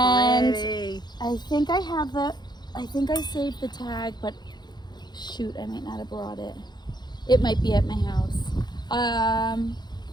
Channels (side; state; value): right; late; 0.21 ms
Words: pretty. I think I saved the tag, but shoot, I might not have brought it. It might be at my house.